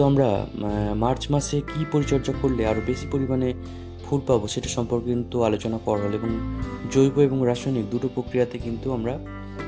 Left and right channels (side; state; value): both; identical; correlation 1.00